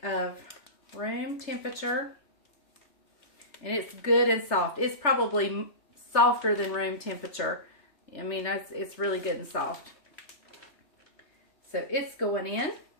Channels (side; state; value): right; late; 3.3 ms